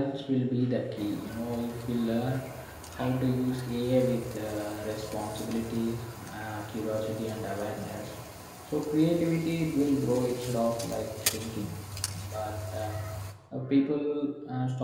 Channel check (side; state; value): both; identical; correlation 1.00